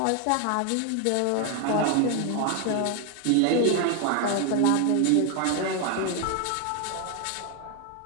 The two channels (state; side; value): different; both; correlation 0.01